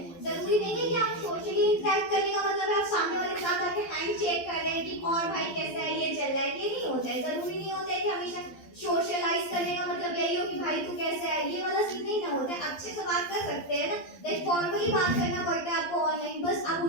जरूरी नहीं है कि आप सोशली इंटरेक्ट करने का मतलब है आप सामने वाले के साथ आके हैंड चेक कर रहे हैं कि और भाई कैसा है, ये चल रहा है, ये नहीं होता है। जरूरी नहीं होता है कि हमेशा सोशलाइज करने का मतलब यही हो कि भाई तू कैसा है, ये वाला सीन नहीं ना होता है। अच्छे से बात कर सकते हैं ना, लाइक फॉर्मली बात करना पड़ता है आपको ऑनलाइन, बस आप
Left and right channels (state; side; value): late; right; 12 ms